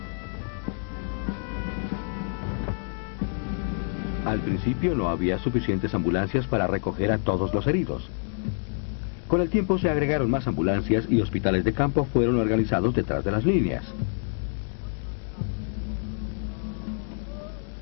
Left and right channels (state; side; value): silent; right; 60 dB below the other